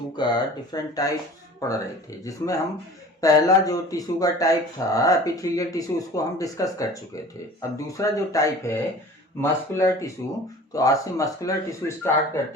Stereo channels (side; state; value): both; normal; correlation 0.43